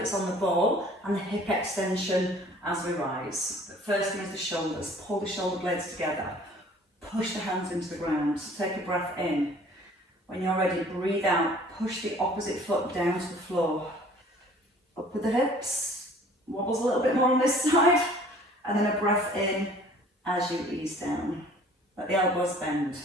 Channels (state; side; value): normal; both; correlation 0.52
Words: on the ball and the hip extension as we rise. But first thing is the shoulders. Pull the shoulder blades together. Push the hands into the ground. So take a breath in. When you're ready, breathe out. Push the opposite foot down to the floor. Up with the hips. Wobbles a little bit more on this side. And then a breath in as you ease down. Let the elbows bend.